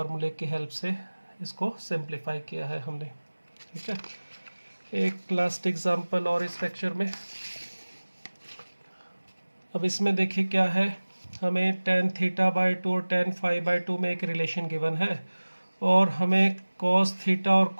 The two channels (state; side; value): inverted; both; correlation -1.00